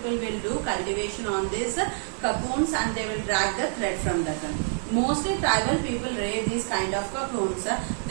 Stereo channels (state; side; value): silent; left; 60 dB below the other